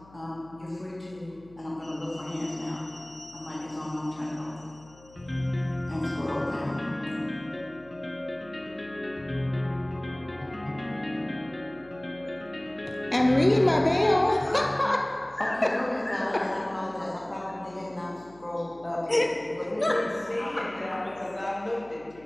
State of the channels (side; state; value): left; noise; hum, 24 dB below the sound